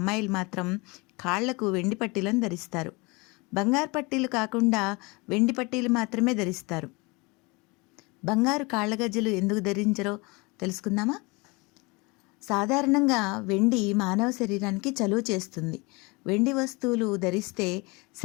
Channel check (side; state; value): right; quieter; 26.6 dB